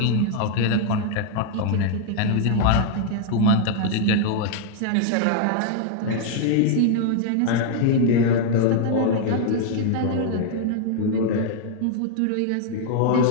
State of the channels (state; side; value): different; both; correlation 0.00